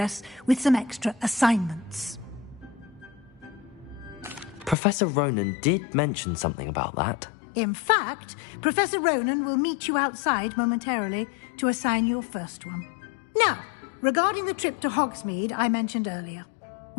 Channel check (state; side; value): drops out; right; at 4.8 s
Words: with some extra assignments. Professor Ronan did mention something about that. In fact, Professor Ronan will meet you outside momentarily to assign your first one. Now, regarding the trip to Hogsmeade I mentioned earlier,